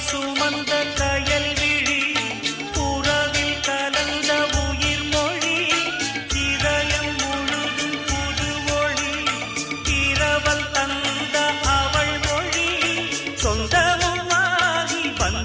சுமந்த கயல் விழி புறவில் கலந்த உயிர் மொழி இதயம் முழுதும் புது ஒளி இரவல் தந்த அவள் மொழி சொந்தமுமாகி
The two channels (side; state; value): both; identical; correlation 1.00